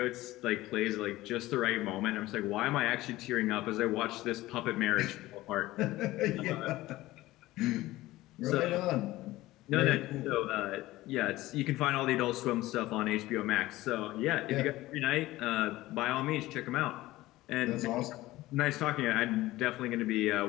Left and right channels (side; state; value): right; quieter; 17.4 dB